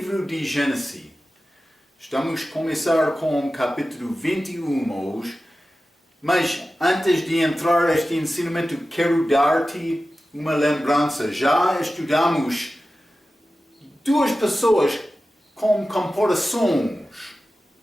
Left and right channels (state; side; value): normal; both; correlation 0.94